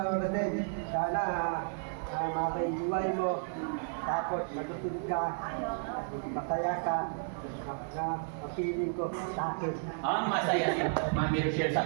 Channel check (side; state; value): left; silent; 56 dB below the other